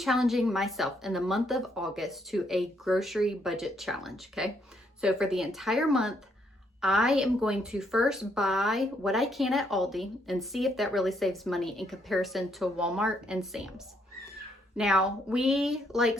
myself in the month of August to a grocery budget challenge, okay? So for the entire month, I am going to first buy what I can at Aldi and see if that really saves money in comparison to Walmart and Sam's. Now, we like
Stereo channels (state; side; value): normal; both; correlation 0.72